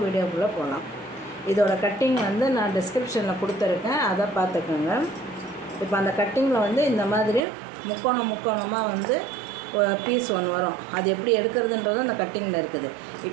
வீடியோக்குள்ளே போகலாம். இதோட கட்டிங் வந்து நான் டிஸ்கிரிப்ஷனில் கொடுத்துருக்கேன், அதை பார்த்துக்கோங்க. இப்போ அந்த கட்டிங்கில் வந்து இந்த மாதிரி முக்கோணமாக வந்து பீஸ் ஒன்று வரும். அது எப்படி எடுக்கிறதுன்றது அந்த கட்டிங்கில் இருக்குது.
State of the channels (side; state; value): left; drops out; at 7.4 s